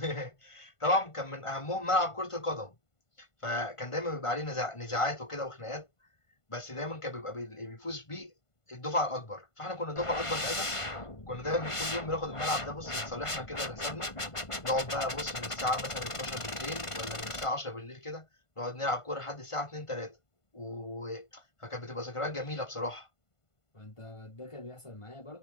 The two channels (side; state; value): right; late; 1.5 ms